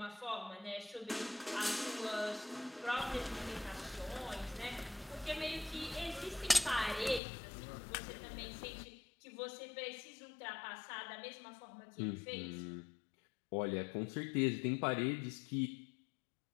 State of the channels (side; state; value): right; drops out; at 7.2 s